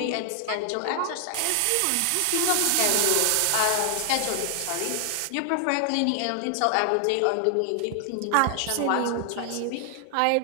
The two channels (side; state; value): both; different; correlation 0.00